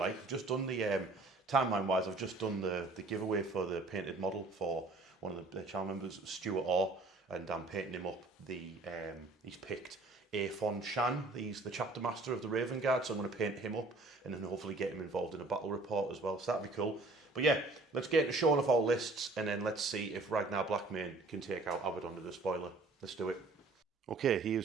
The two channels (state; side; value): quieter; left; 3.2 dB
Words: I've just done the timeline wise. I've just done the giveaway for the painted model for one of the channel members, Stuart Orr, and I'm painting him up. He's picked Aphon Shan. He's the chapter master of the Raven Guard, so I'm going to paint him up and then hopefully get him involved in a battle report as well. So that'd be cool. But yeah, let's get into showing off our lists and then let's see if Ragnar Blackmane can take out Abaddon the Despoiler. Let's do it. Okay,